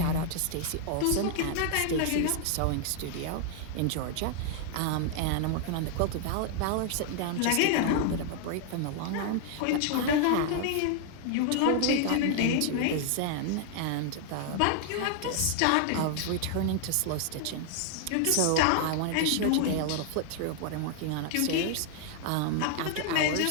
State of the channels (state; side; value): different; both; correlation 0.00